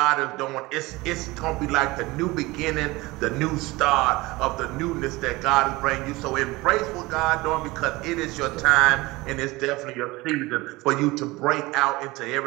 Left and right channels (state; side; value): quieter; left; 21.4 dB